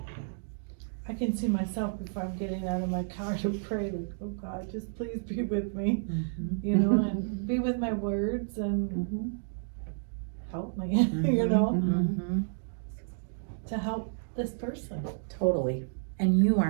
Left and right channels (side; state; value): left; silent; digital silence